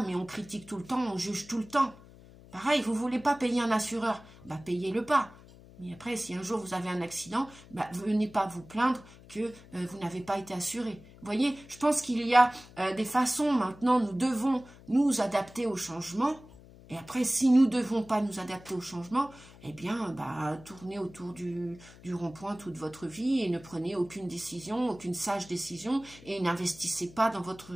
mais on critique tout le temps, on juge tout le temps. Pareil, vous ne voulez pas payer un assureur, bah payez-le pas. Mais après, si un jour vous avez un accident, bah, venez pas vous plaindre que vous n'avez pas été assuré. Vous voyez, je pense qu'il y a des façons maintenant, nous devons nous adapter au changement. Et après, si nous ne devons pas nous adapter au changement, eh bien, bah, tournez autour du rond-point toute votre vie et ne prenez aucune décision, aucune sage décision et n'investissez pas dans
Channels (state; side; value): noise; left; hum, 21 dB below the sound